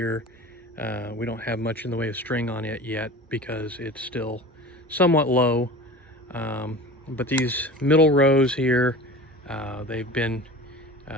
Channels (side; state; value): both; normal; correlation 0.36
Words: we don't have much in the way of string on it yet because it's still somewhat low. But these middle rows here, they've been